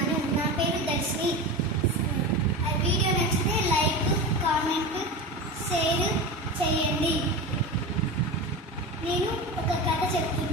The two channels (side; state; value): both; normal; correlation 0.25